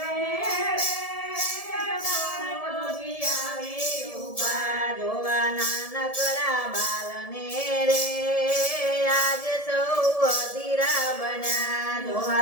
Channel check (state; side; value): late; right; 1.7 ms